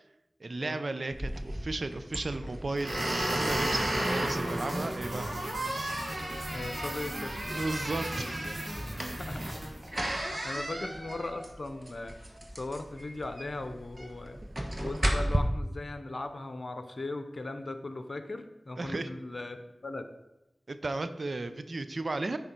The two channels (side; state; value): both; normal; correlation 0.96